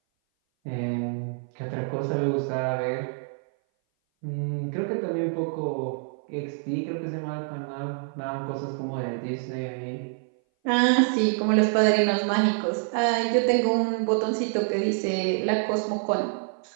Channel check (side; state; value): left; silent; 58 dB below the other